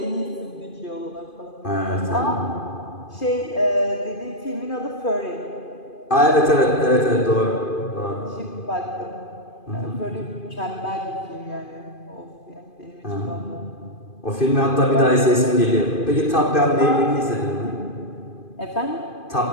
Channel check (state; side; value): late; right; 2.5 ms